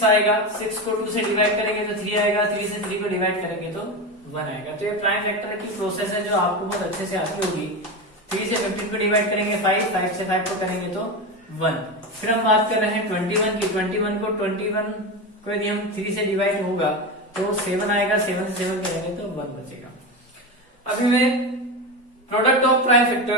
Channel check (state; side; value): normal; both; correlation 0.19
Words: आएगा, 6 को 2 से डिवाइड करेंगे तो 3 आएगा, 3 से 3 को डिवाइड करेंगे तो 1 आएगा। तो ये प्राइम फैक्टर की प्रोसेस है जो आपको बहुत अच्छे से आती होगी। 3 से 15 को डिवाइड करेंगे 5, 5 से 5 को करेंगे तो 1। फिर हम बात कर रहे हैं 21 की। 21 को यदि हम 3 से डिवाइड होगा तो 7 आएगा, 7 से 7 करेंगे तो 1 बचेगा। अभी मैं प्रोडक्ट ऑफ प्राइम